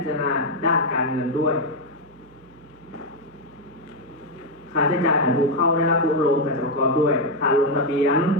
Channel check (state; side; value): noise; right; hum, 27 dB below the sound